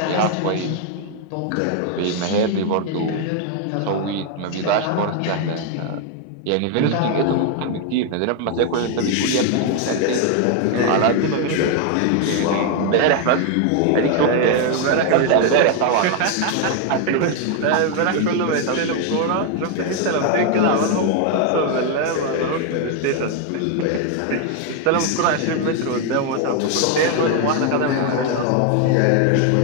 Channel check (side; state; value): both; different; correlation 0.01